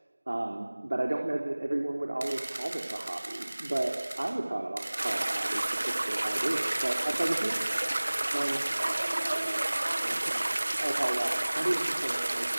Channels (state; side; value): inverted; both; correlation -1.00